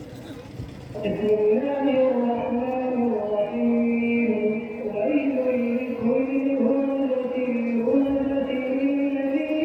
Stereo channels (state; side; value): identical; both; correlation 1.00